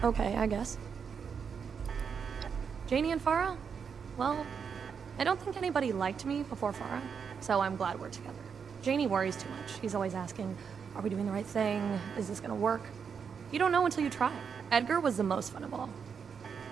Okay, I guess. Janie and Farah? Well, I don't think anybody liked me before Farah, so I'm glad we're together. Janie worries too much. He's always asking, are we doing the right thing? Is this gonna work? You don't know until you try. Edgar was the most fun of all.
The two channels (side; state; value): left; quieter; 6.5 dB